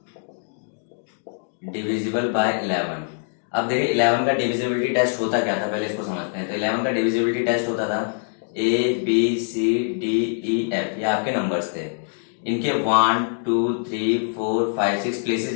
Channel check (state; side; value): silent; right; digital silence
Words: Divisible by 11। अब देखिए 11 का डिविजिबिलिटी टेस्ट होता क्या था, पहले इसको समझते हैं। तो 11 का डिविजिबिलिटी टेस्ट होता था ABCDEF, ये आपके नंबर्स थे। इनके 1, 2, 3, 4, 5, 6 प्लेसेस